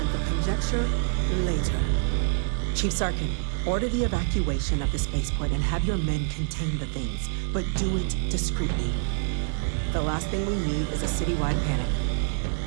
for conjecture later. Chief Sarkin, order the evacuation of the spaceport and have your men contain the things, but do it discreetly. The last thing we need is a citywide panic.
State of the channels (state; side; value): silent; left; digital silence